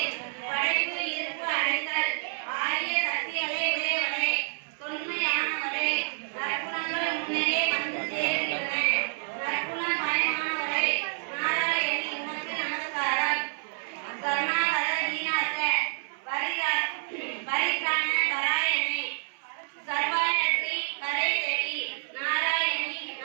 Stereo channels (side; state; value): left; silent; 59 dB below the other